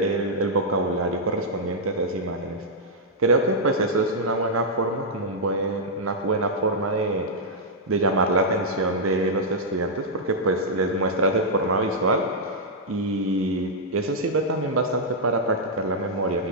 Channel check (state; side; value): normal; both; correlation -0.07